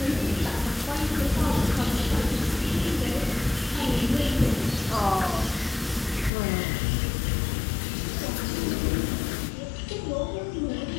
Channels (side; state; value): right; drops out; at 6.3 s